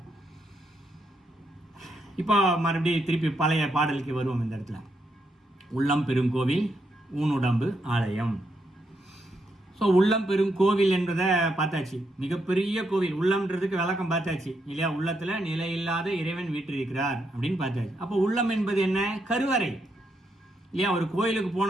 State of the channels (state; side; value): normal; both; correlation 0.80